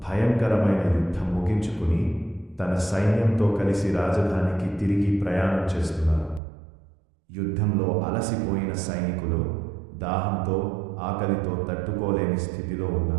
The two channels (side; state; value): left; drops out; at 6.4 s